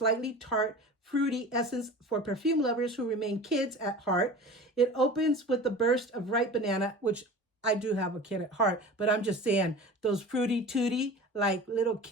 tart, fruity essence for perfume lovers who remain kids at heart. It opens with the burst of ripe banana, which I do have a kid at heart, but I'm just saying those fruity tooty, like little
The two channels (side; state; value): both; normal; correlation 0.37